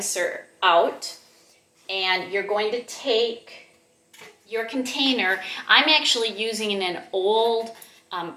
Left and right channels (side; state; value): both; identical; correlation 1.00